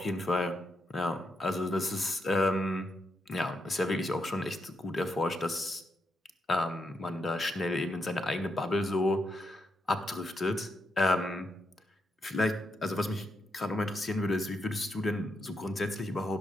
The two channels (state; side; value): normal; both; correlation 0.81